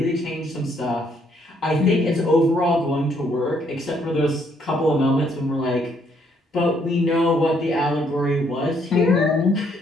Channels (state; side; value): normal; both; correlation 0.69